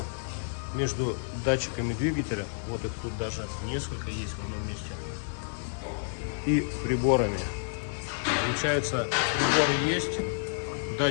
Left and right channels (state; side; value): silent; right; 58 dB below the other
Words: между датчиками двигателя, вот их тут даже несколько есть в одном месте, и приборами. Получается, приборы есть,